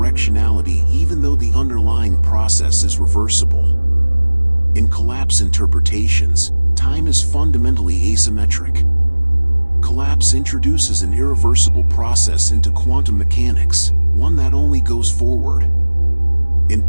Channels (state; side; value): inverted; both; correlation -1.00